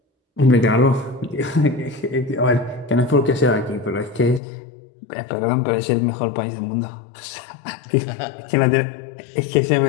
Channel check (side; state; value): right; drops out; at 4.4 s